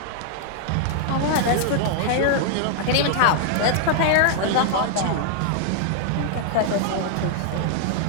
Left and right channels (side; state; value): both; different; correlation -0.01